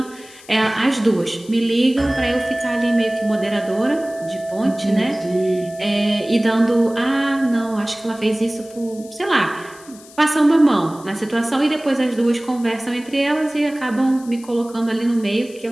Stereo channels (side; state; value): left; noise; hiss, 22 dB below the sound